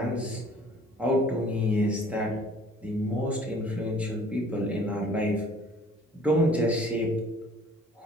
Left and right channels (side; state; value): both; normal; correlation 0.53